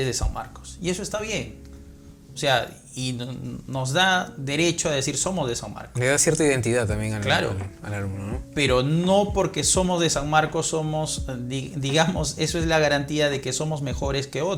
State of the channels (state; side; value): identical; both; correlation 1.00